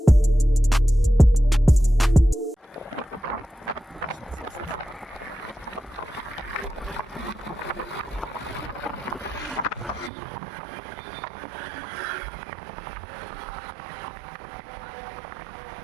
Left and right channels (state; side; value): drops out; left; at 10.1 s